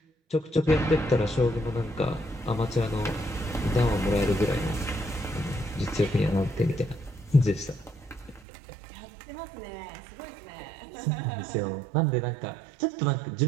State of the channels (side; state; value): left; drops out; at 8.4 s